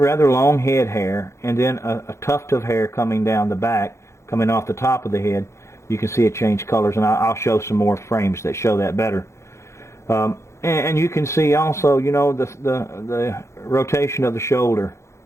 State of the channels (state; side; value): late; right; 0.14 ms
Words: long head hair, and then a tuft of hair coming down the back, coming off the top of the head. You can see it change colors, and I'll show some more frames that show that better. And you can see also, the rotation of the shoulder,